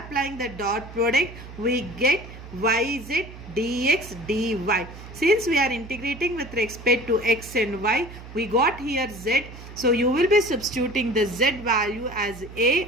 the dot product, we get yz dx dy. Since we are integrating with respect to x and y, we got here z. So you will be substituting the z value as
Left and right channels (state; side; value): noise; right; hum, 15 dB below the sound